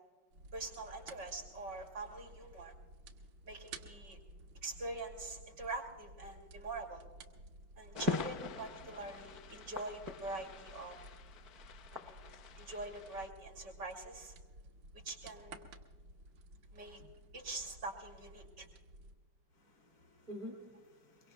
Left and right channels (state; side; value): late; left; 5.3 ms